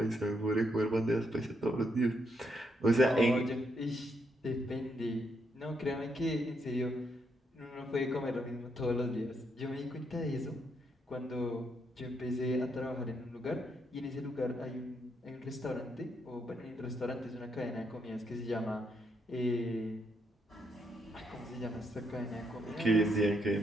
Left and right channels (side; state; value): both; normal; correlation 0.77